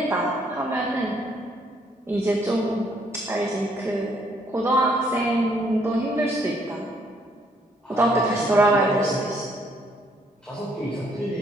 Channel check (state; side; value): normal; both; correlation 0.68